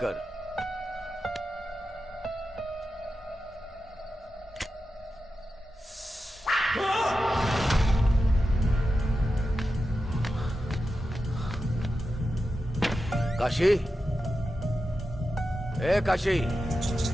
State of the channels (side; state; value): both; normal; correlation 0.91